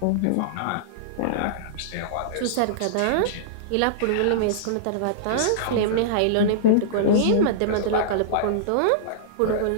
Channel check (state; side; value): different; both; correlation -0.02